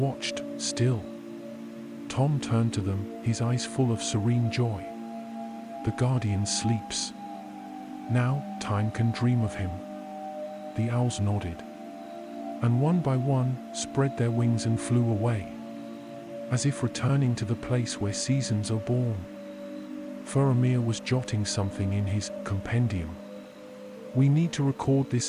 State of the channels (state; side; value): identical; both; correlation 1.00